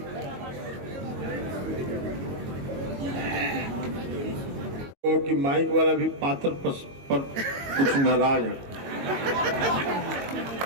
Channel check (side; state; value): left; late; 22 ms